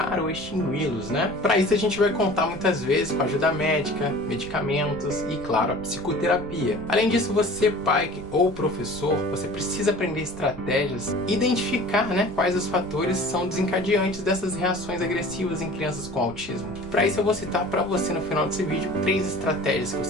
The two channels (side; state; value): right; noise; rumble, 17 dB below the sound